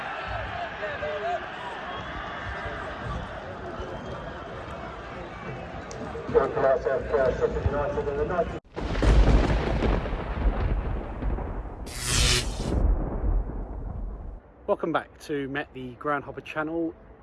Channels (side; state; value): both; identical; correlation 1.00